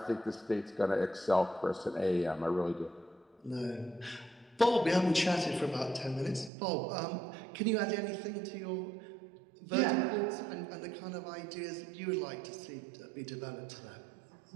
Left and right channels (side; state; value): left; drops out; at 6.5 s